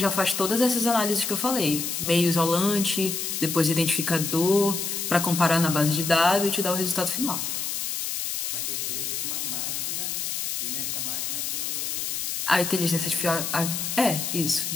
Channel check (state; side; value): noise; left; hiss, 2 dB below the sound